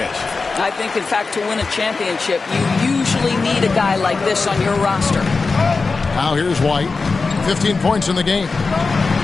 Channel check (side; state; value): right; quieter; 4.2 dB